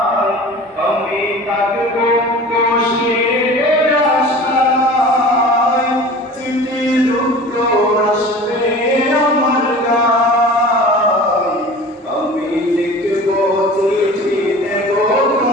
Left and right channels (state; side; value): normal; both; correlation 0.40